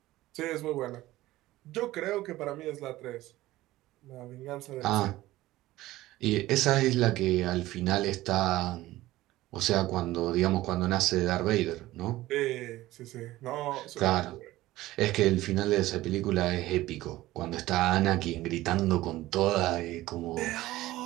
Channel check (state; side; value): quieter; left; 16.8 dB